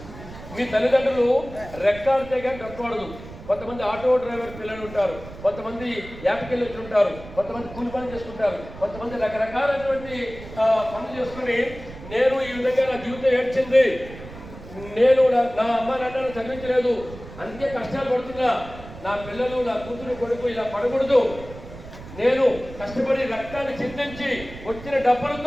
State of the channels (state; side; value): noise; right; rumble, 15 dB below the sound